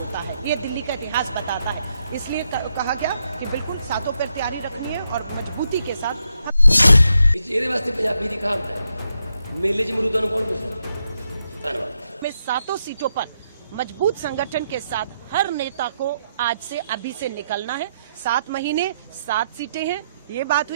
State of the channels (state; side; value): inverted; both; correlation -0.81